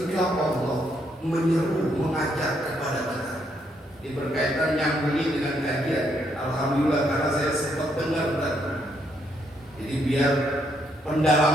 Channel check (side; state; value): both; normal; correlation 0.74